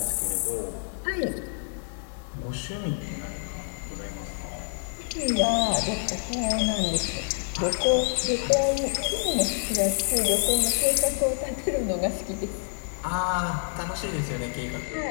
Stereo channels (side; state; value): right; silent; digital silence